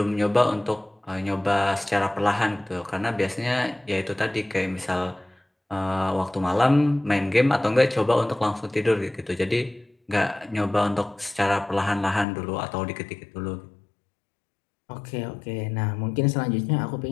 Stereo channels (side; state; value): right; drops out; at 12.2 s